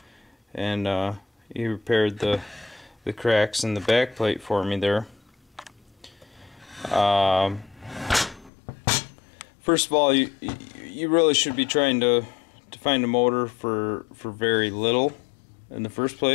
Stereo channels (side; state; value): right; drops out; at 8.5 s